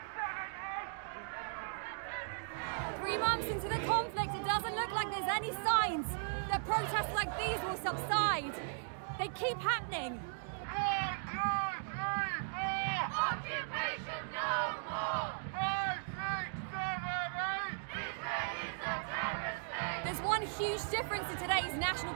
3 months into the conflict, it doesn't look like there's any signs that protests like these will subside. They keep happening. Occupation no more! 5, 6, 7, 8! Israel is a terrorist state! There's one huge difference in today's National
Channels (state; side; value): silent; left; digital silence